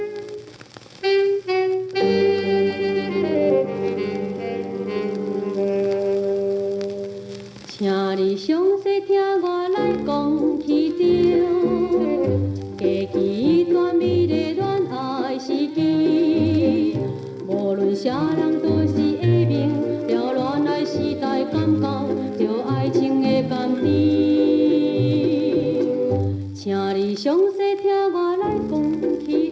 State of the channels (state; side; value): identical; both; correlation 1.00